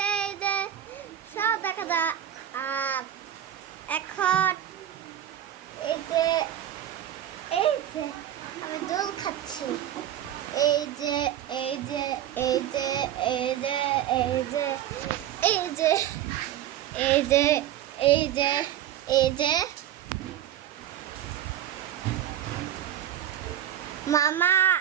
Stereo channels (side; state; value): left; quieter; 11.3 dB